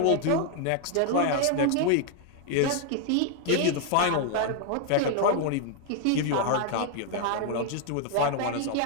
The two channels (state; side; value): different; both; correlation 0.00